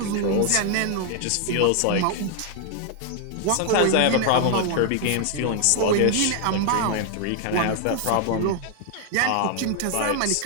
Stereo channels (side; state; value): both; different; correlation 0.00